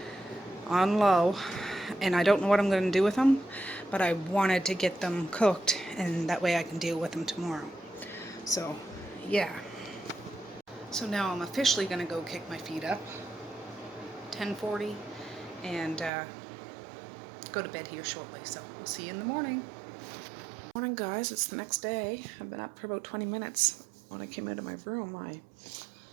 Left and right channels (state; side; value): drops out; left; at 16.1 s